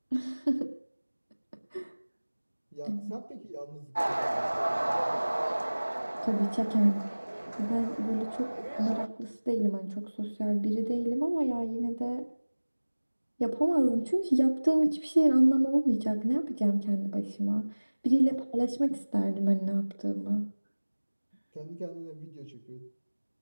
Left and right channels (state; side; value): inverted; both; correlation -1.00